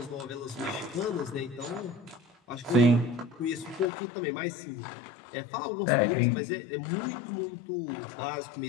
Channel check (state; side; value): drops out; right; at 3.9 s